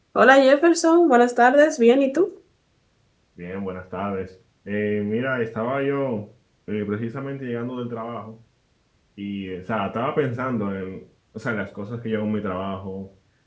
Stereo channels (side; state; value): both; identical; correlation 1.00